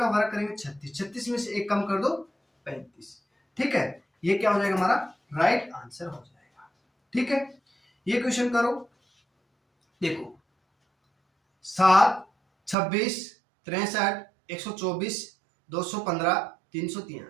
वर्ग करेंगे 36, 36 में से 1 कम कर दो 35, ठीक है। ये क्या हो जाएगा, हमारा राइट आंसर हो जाएगा। ठीक है, ये क्वेश्चन करो। देखो 7, 26, 63, 124, 215,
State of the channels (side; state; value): left; drops out; at 12.8 s